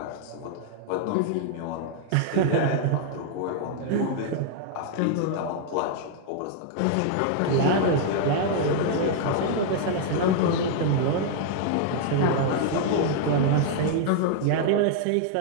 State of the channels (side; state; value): both; different; correlation 0.00